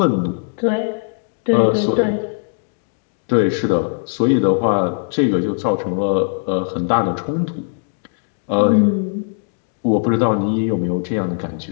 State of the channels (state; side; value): silent; right; 60 dB below the other